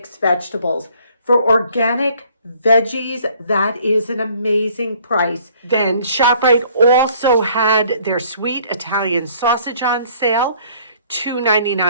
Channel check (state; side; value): inverted; both; correlation -0.59